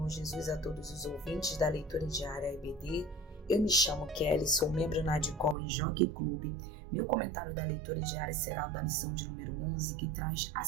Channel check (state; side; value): drops out; left; at 5.6 s